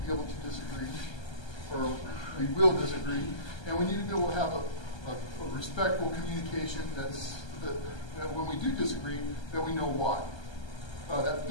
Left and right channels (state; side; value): late; right; 1.3 ms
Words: be able to disagree, or we will disagree, and we need to be able to have a respectful communication that when we do disagree, that we know why. That